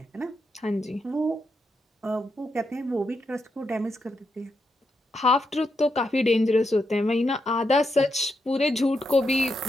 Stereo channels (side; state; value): both; normal; correlation 0.82